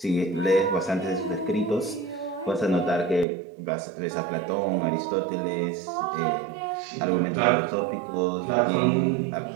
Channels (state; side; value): drops out; left; at 3.2 s